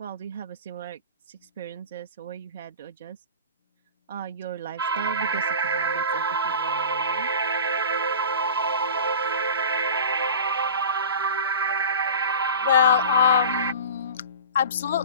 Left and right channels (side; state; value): both; inverted; correlation -0.35